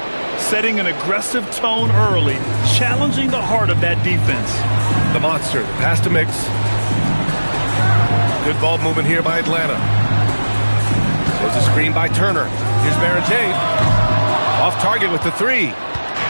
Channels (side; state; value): both; inverted; correlation -1.00